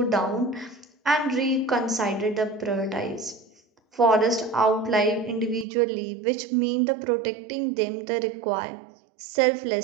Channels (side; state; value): left; drops out; at 5.7 s